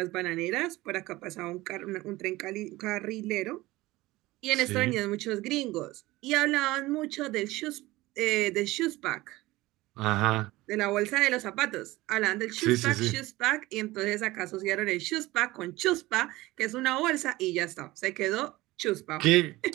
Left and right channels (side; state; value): left; quieter; 19.0 dB